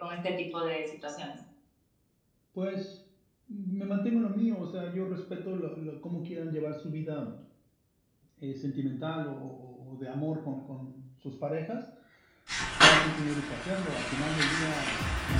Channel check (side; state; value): both; identical; correlation 1.00